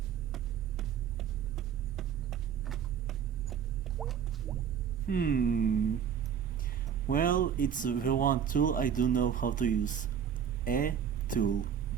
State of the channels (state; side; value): quieter; left; 8.2 dB